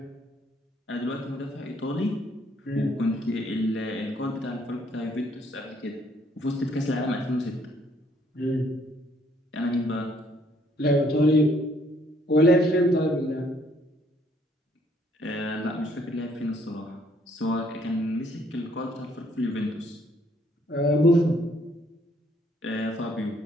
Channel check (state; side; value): normal; both; correlation 0.66